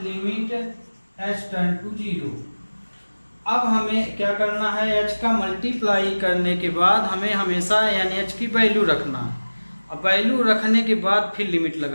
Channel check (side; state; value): both; inverted; correlation -1.00